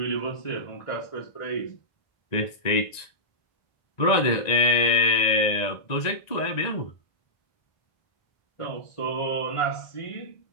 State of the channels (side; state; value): right; late; 1.9 ms